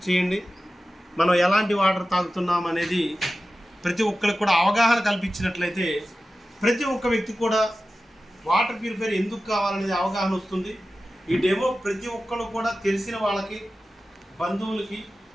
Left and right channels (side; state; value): both; normal; correlation 0.94